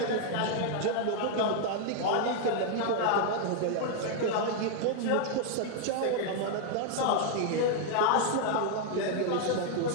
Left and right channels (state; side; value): different; both; correlation 0.00